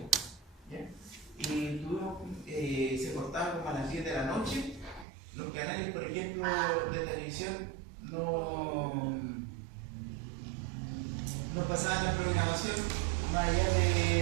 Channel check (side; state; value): left; drops out; at 5.1 s